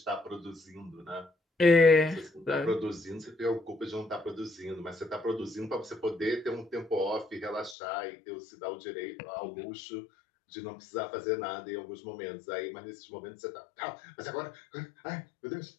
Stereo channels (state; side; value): drops out; right; at 7.8 s